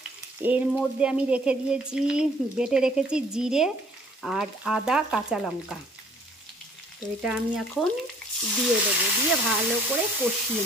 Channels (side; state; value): both; normal; correlation 0.58